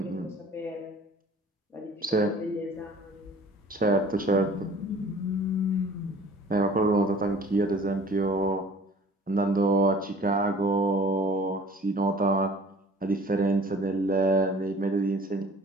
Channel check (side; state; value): both; normal; correlation 0.49